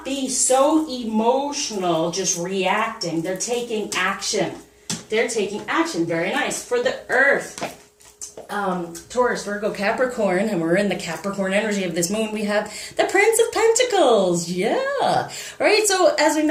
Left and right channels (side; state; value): both; identical; correlation 1.00